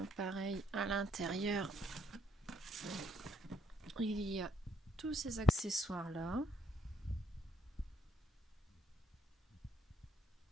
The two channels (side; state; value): both; normal; correlation 0.70